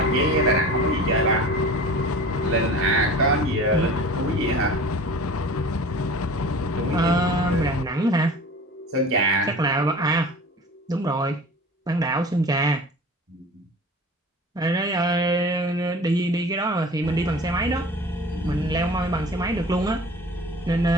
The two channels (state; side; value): normal; both; correlation 0.40